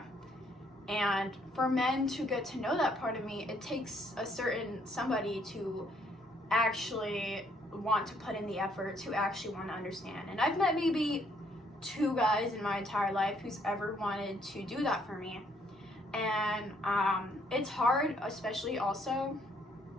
And for men to get to know that part of me, it takes a certain somebody to actually want to put in the effort, to actually want to understand. And I've met maybe 2 guys in my entire life who's ever wanted to do that for me. And it's hard, especially also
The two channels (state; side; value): normal; both; correlation 0.68